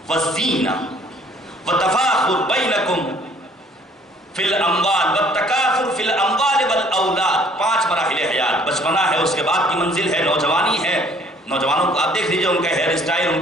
وزینہ وتفاخر بینکم فی الاموال والتکاثر فی الاموال والاولاد۔ 5 مراحل حیات، بچپنا ہے، اس کے بعد کی منزل ہے نوجوانی ہے۔ نوجوانوں کو آپ دیکھ لیجیے، ان کا ہیئر اسٹائل، ان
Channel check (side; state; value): both; normal; correlation 0.58